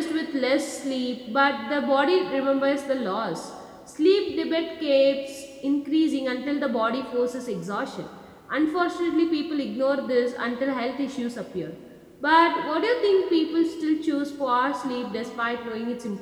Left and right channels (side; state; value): both; identical; correlation 1.00